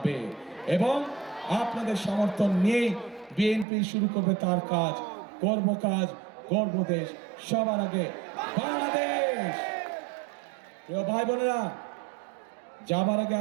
এবং আপনাদের সমর্থন নিয়েই বিএনপি শুরু করবে তার কাজ, করব কাজ, গর্ব দেশ, সবার আগে বাংলাদেশ। প্রিয় ভাই বোনেরা, যাবার আগে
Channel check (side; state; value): left; drops out; at 3.7 s